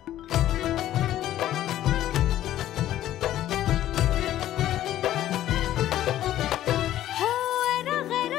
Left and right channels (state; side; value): quieter; right; 13.0 dB